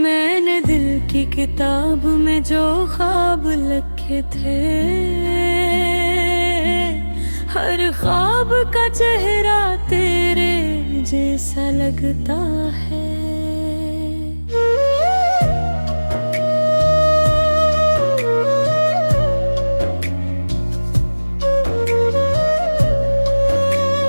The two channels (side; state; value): both; inverted; correlation -1.00